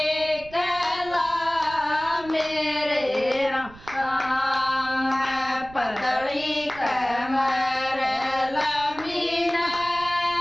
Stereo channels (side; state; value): right; noise; rumble, 19 dB below the sound